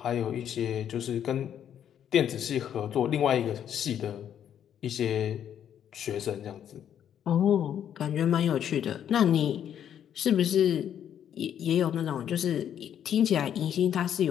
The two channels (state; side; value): quieter; right; 9.6 dB